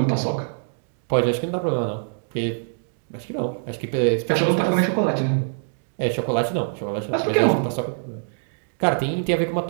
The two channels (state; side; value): silent; left; digital silence